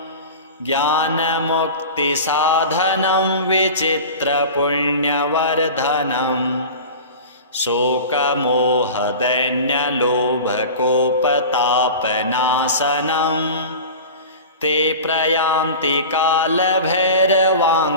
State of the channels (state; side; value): inverted; both; correlation -0.34